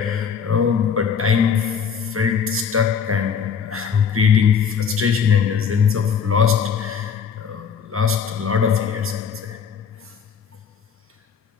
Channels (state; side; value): quieter; right; 6.8 dB